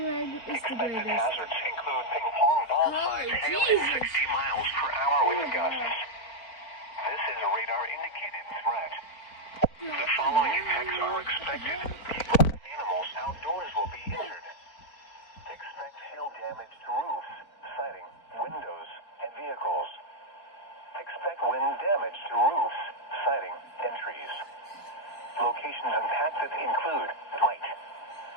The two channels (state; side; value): late; right; 4.5 ms